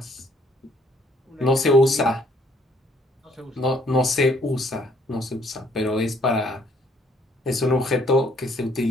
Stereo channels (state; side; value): normal; both; correlation 0.64